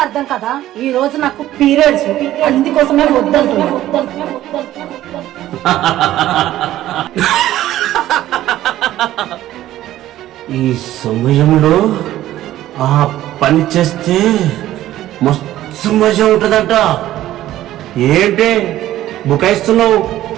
అర్థం కదా. ఈ రోజు నాకు పీరియడ్స్, అందుకోసమే వద్దంటున్నా. ఈ సమయంలో ఆ పని చేస్తే మస్తు మజా ఉంటుందంట. ఏంటి బుకాయిస్తున్నావు?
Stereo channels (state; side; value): quieter; left; 14.0 dB